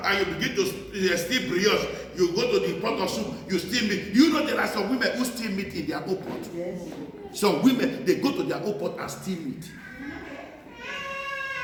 and you begin to steal brioche, you go to the pot of soup, you steal meat. You know there are some women who steal meat in their own pot. Yes. Some women, they go to their own pot and steal meat.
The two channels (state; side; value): identical; both; correlation 1.00